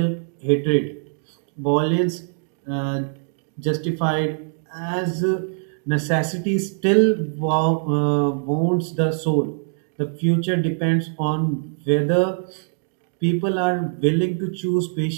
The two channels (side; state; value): left; silent; digital silence